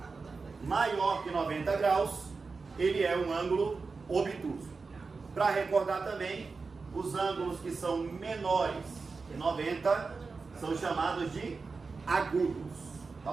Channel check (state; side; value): quieter; left; 4.4 dB